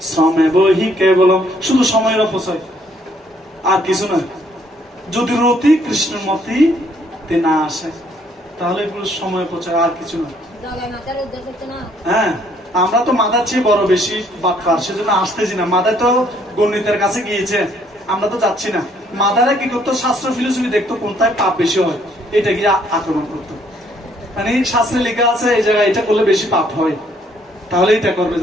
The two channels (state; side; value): normal; both; correlation 0.66